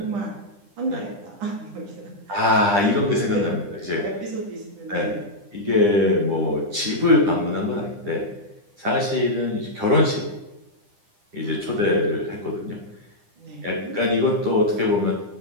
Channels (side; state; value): left; late; 9.9 ms